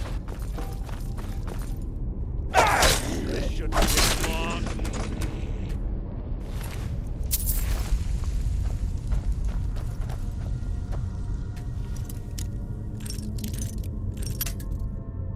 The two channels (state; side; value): identical; both; correlation 1.00